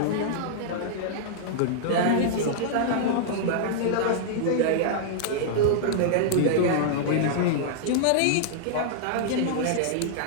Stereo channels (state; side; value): different; both; correlation -0.01